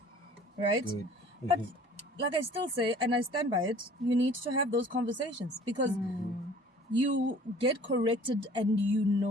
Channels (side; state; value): both; normal; correlation 0.50